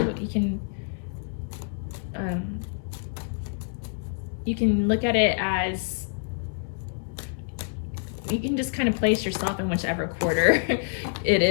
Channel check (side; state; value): right; silent; 60 dB below the other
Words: You can look at it as, you can just kind of place yourself in whichever quarter it